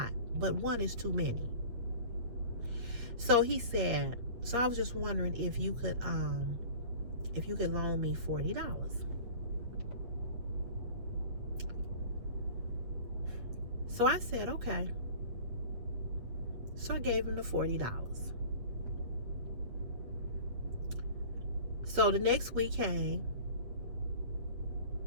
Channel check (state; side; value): late; left; 8.7 ms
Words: but one is too many. So he said, so I was just wondering if you could loan me $40. So I said, okay. So I gave him the $40. So the next week came.